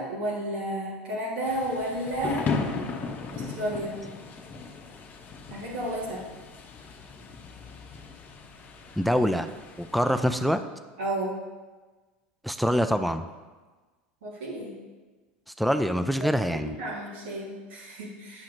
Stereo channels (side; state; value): both; normal; correlation 0.69